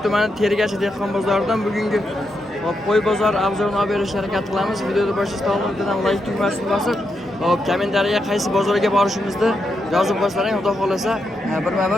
tumani Tergachi dehqon bozoridan bugungi qo'y bozori obzorini olib berishga harakat qilamiz. Videoni boshlashdan oldin like tugmasini bosib, kommentariyaga qaysi bozorga borishimizni yozib qo'ysaring, xudo xolasa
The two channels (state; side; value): normal; both; correlation 0.83